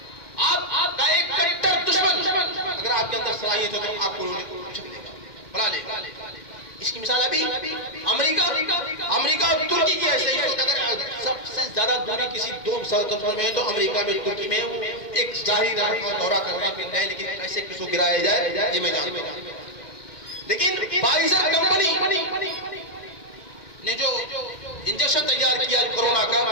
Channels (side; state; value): right; late; 1.9 ms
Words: آپ کا ایک کٹر دشمن اگر آپ کے اندر صلاحیت ہے تو آپ کو اچک لے گا، بلا لے گا. اس کی مثال ابھی امریکہ اور ترکی کی ایسے ہی. اگر سب سے زیادہ دوری کسی 2 مسلسل میں ہے تو امریکہ میں ترکی میں ایک ظاہری دورہ کرنا پھرنا ہے، لیکن کیسے کس کو گرایا جائے یہ میں جانتا ہوں. لیکن فائزر کمپنی نے جو انجیکشن تیار کیا کورونا